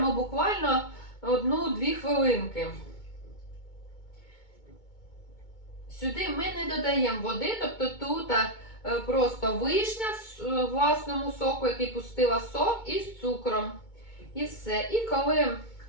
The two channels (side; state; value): right; late; 2.2 ms